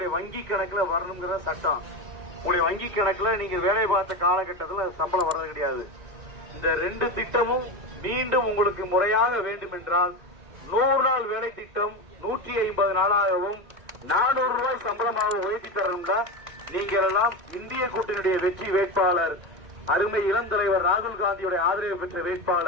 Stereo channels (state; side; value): late; left; 2.1 ms